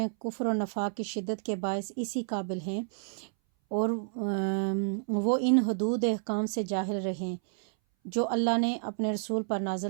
کفر و نفاق کی شدت کے باعث اسی قابل ہیں، اور وہ ان حدود احکام سے جاہل رہیں جو اللہ نے اپنے رسول پر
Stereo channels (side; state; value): left; silent; 58 dB below the other